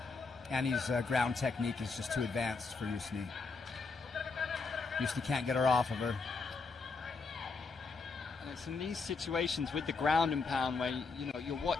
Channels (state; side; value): quieter; right; 4.3 dB